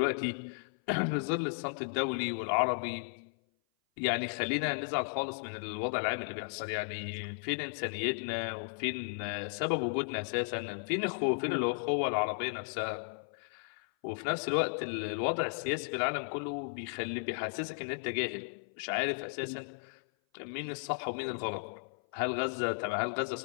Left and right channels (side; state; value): right; silent; 55 dB below the other